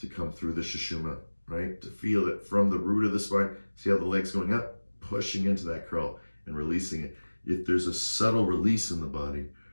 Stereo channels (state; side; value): inverted; both; correlation -1.00